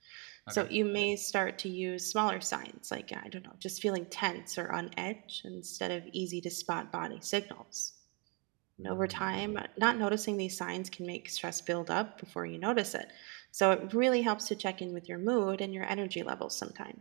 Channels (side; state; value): left; quieter; 32.0 dB